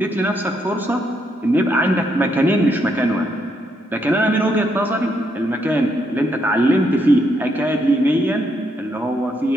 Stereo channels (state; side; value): normal; both; correlation 0.76